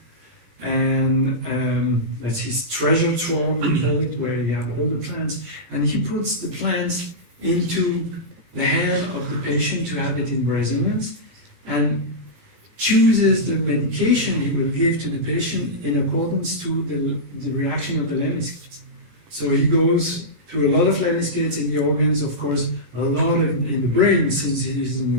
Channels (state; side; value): late; left; 18 ms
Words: and that's his treasure trove, we call it, where you have all the plants, and he puts the plants into the hand of the patient to have it in resonance, and chooses the medication he will give to the patient in accordance to the reaction of the lemniscates. So he goes to a lot of lemniscates in the organs, of course, a lot in the brain, since he is a